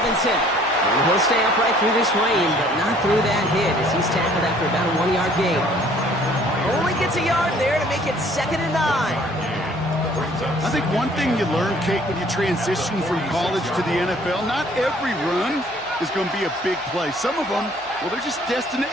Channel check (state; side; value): noise; right; hum, 28 dB below the sound